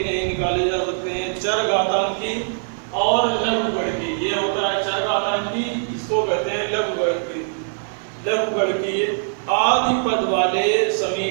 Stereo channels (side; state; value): left; silent; 56 dB below the other